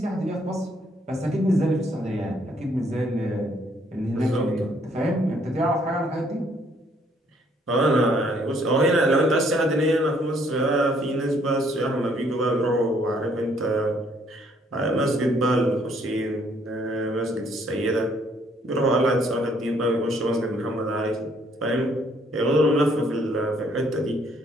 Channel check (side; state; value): both; normal; correlation 0.66